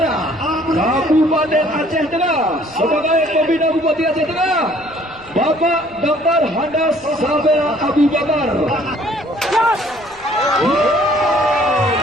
Kabupaten Aceh Tengah sebagai pembina Bupati Aceh Tengah, Bapak Dr. Handas Sabera Abu Bakar.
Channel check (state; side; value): noise; left; rumble, 28 dB below the sound